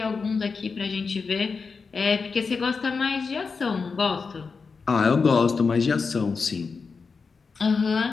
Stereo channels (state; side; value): quieter; right; 4.9 dB